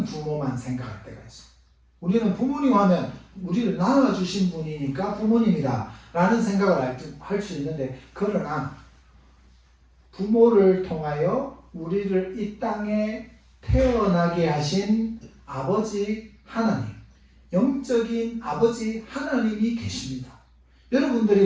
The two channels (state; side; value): identical; both; correlation 1.00